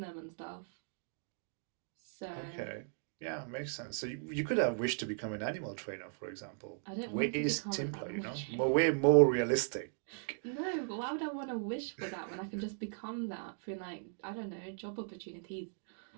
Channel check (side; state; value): left; silent; digital silence